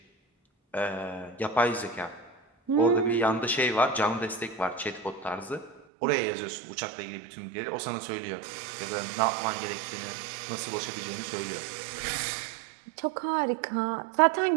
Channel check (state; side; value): drops out; left; at 5.8 s